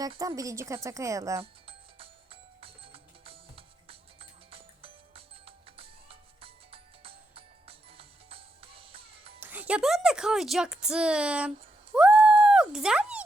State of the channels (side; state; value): both; normal; correlation 0.82